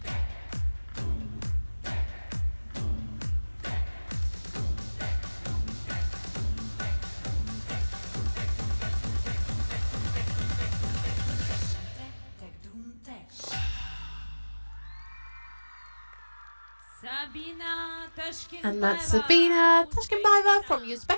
Tag, doom tag. Sabina Tashkent. And that's Sabina Tashkent from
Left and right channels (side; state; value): both; inverted; correlation -1.00